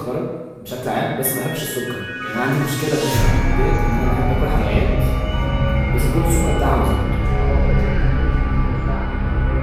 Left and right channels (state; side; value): identical; both; correlation 1.00